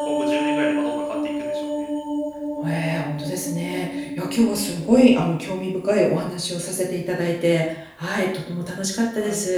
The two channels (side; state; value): both; identical; correlation 1.00